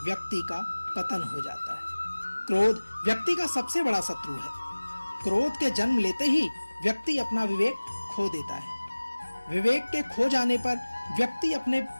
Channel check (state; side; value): inverted; both; correlation -1.00